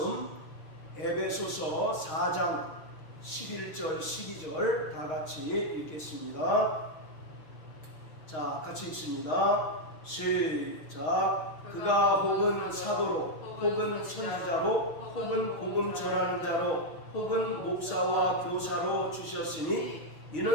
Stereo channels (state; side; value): late; right; 6.4 ms